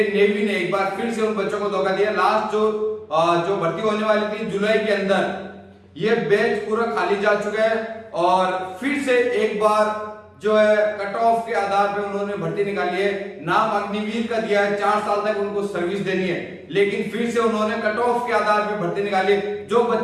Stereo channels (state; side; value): identical; both; correlation 1.00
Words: नेवी ने एक बार फिर से उन बच्चों को धोखा दिया। लास्ट जो भर्ती होने वाली थी जुलाई के अंदर, ये बैच पूरा खाली जा चुका है और फिर से एक बार जो है कट ऑफ के आधार पे उन्होंने भर्ती निकाली है। नाम अग्निवीर का दिया है, 4 साल तक उनको सर्विस देनी है, लेकिन फिर से उन्होंने कट ऑफ के आधार पे भर्ती निकाली है। जो